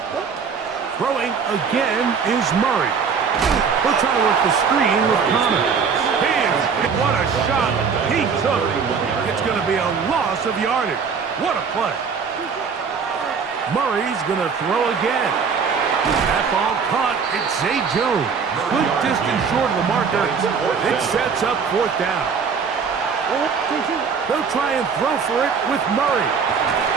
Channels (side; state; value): left; quieter; 5.9 dB